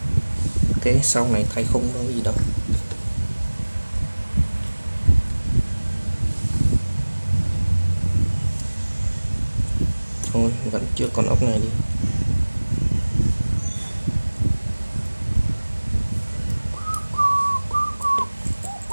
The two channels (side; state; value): both; inverted; correlation -1.00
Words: Ok, sau này thay khung đâu gì đâu. Thôi vẫn chưa con ốc này đi.